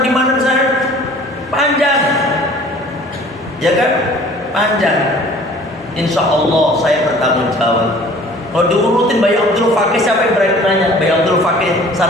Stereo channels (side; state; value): both; normal; correlation 0.49